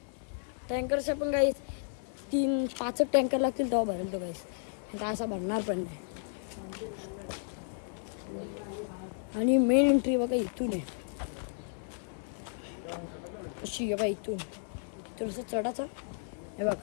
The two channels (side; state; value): right; silent; 56 dB below the other